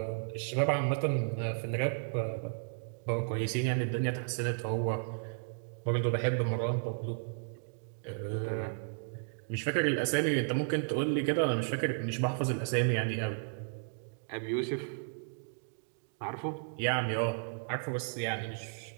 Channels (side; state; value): left; silent; digital silence